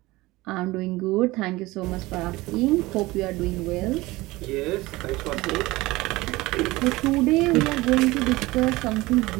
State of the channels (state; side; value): quieter; left; 20.3 dB